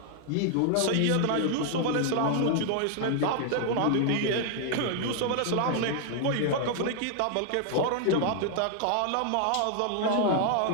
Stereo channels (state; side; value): different; both; correlation 0.00